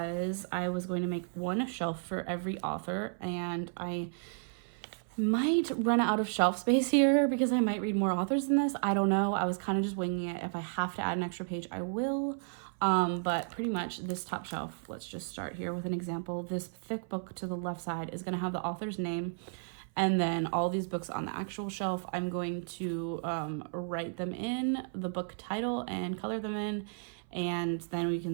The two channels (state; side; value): silent; left; 56 dB below the other